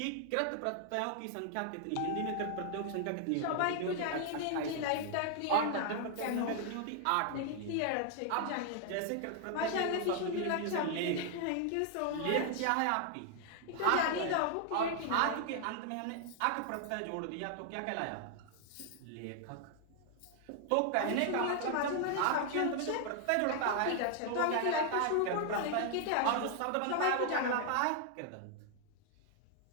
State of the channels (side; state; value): both; different; correlation 0.00